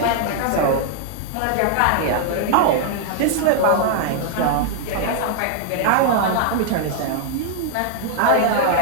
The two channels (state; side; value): different; both; correlation -0.01